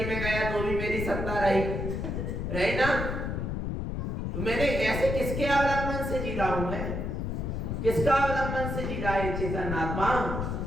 में गया तो भी मेरी सत्ता रही ना। तो मैंने ऐसे किसके अवलंबन से जी रहा हूं मैं? किसका अवलंबन से जी रहा है चेतन आत्मा?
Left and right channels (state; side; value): noise; left; rumble, 2 dB below the sound